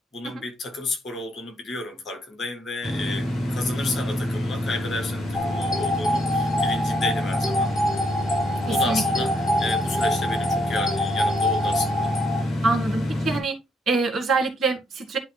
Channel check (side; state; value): both; normal; correlation 0.73